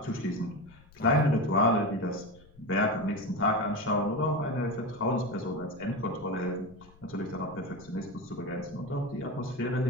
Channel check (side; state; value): left; noise; rumble, 25 dB below the sound